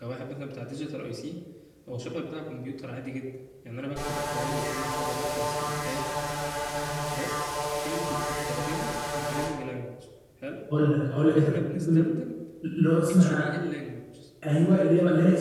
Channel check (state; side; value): identical; both; correlation 1.00